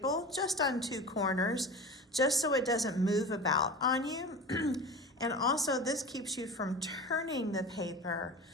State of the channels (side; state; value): both; normal; correlation 0.32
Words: just on two corners, just so it doesn't move about on you. And also this keeps you from turning the paper.